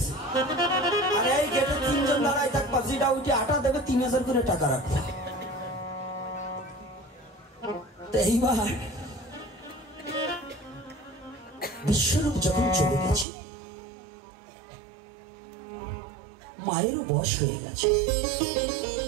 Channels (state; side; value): drops out; left; at 13.2 s